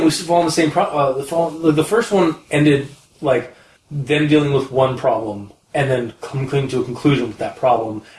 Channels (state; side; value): identical; both; correlation 1.00